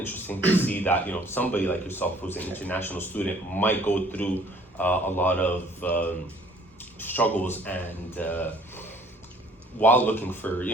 to see that, somebody like yourself who's an international student might go through a lot of struggles and while looking for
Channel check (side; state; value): both; normal; correlation 0.56